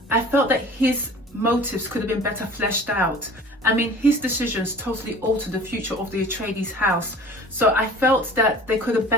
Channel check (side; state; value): both; normal; correlation 0.44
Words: I felt that his motives could have been better fleshed out. I mean, his decisions totally altered the future of the Atreides house. So I felt that they could have